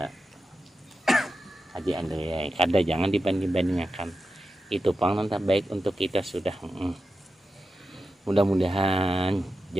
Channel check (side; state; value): both; normal; correlation 0.90